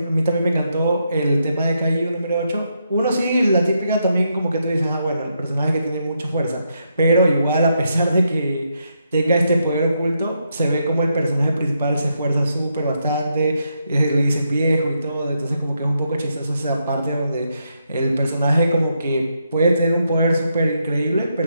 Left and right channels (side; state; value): both; inverted; correlation -0.80